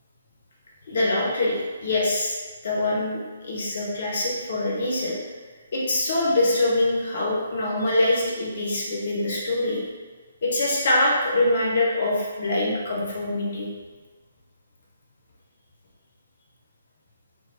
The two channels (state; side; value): inverted; both; correlation -0.74